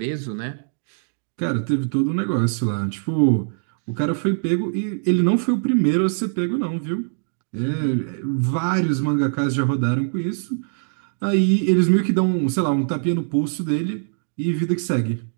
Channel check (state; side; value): silent; left; digital silence